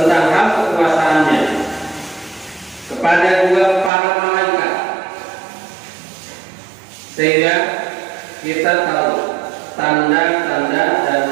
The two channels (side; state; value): left; drops out; at 3.9 s